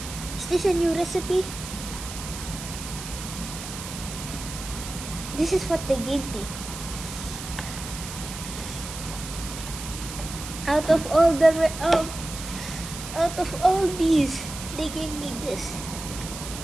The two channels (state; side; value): noise; right; hiss, 10 dB below the sound